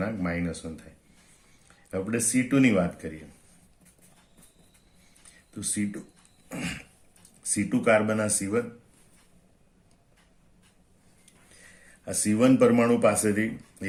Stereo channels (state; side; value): identical; both; correlation 1.00